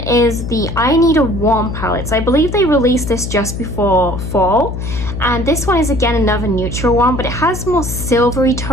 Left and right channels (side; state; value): left; noise; hum, 6 dB below the sound